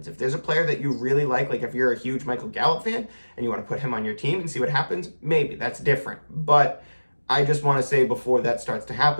If there's a player that you really like if you're a huge Michael Gallup fan and you want to put him on your team and see what happens, maybe that's different. But I just want to say before that starts to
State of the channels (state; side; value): inverted; both; correlation -1.00